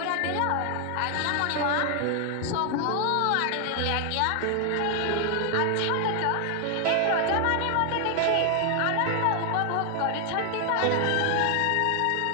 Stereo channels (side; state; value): both; different; correlation 0.00